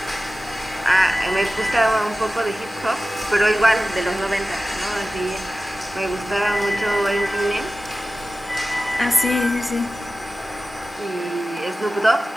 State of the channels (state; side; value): normal; both; correlation 0.95